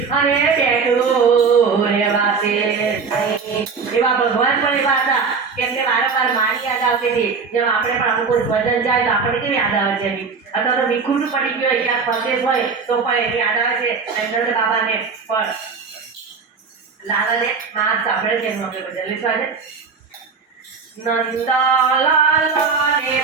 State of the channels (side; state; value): left; quieter; 5.2 dB